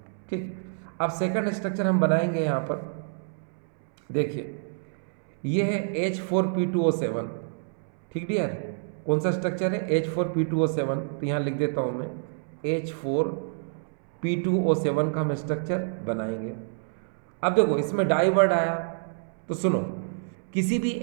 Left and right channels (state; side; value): silent; left; 60 dB below the other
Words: ठीक। अब सेकंड स्ट्रक्चर हम बनाएंगे यहाँ पर। देखिए ये है H4P2O7, ठीक डियर। कौन सा स्ट्रक्चर है, H4P2O7। तो यहाँ लिख देता हूँ मैं, H4P2O7 का हम स्ट्रक्चर बनाएंगे। अब देखो इसमें डाई वर्ड आया, तो सुनो, किसी भी